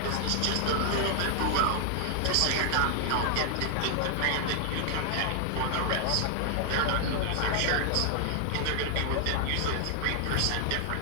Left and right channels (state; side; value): different; both; correlation 0.00